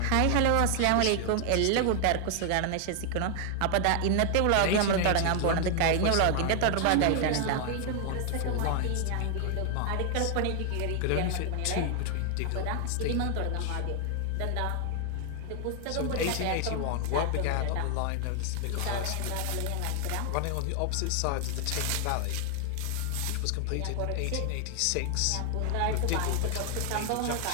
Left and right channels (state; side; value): different; both; correlation 0.00